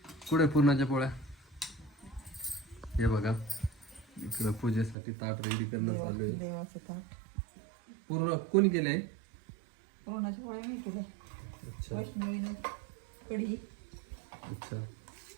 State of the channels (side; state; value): left; drops out; at 5.0 s